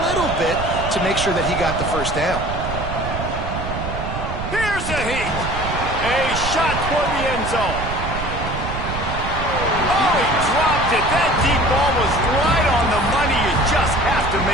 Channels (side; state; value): right; noise; rumble, 6 dB below the sound